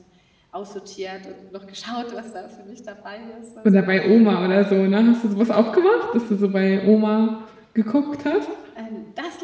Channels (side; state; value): both; identical; correlation 1.00